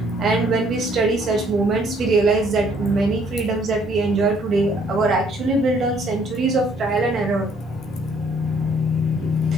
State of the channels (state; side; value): normal; both; correlation 0.63